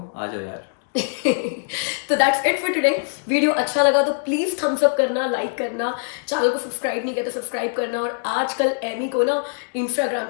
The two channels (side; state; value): right; silent; digital silence